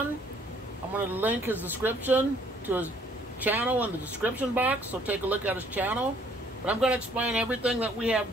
I'm going to link his description to his channel in the description box, so take a look at his channel. But I'm going to explain everything that we have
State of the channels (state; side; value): normal; both; correlation 0.61